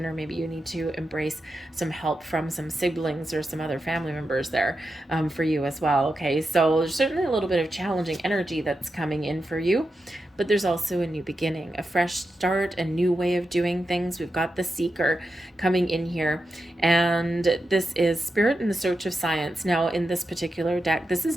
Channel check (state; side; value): normal; both; correlation 0.89